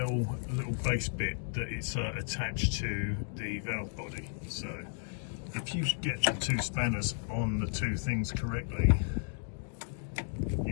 little base bit that it's attached to the valve body. So, if you get the two spanners on the two things correctly,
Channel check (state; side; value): silent; right; 55 dB below the other